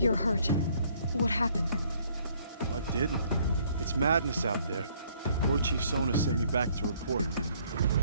hurt. What happened? What didn't? It's madness out there. War Chief Sona sent me back to report.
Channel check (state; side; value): inverted; both; correlation -0.63